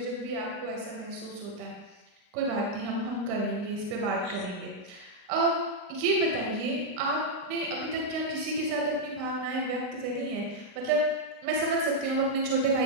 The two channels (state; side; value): late; left; 38 ms